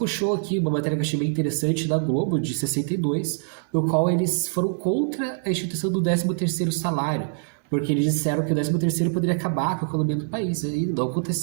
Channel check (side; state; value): left; silent; digital silence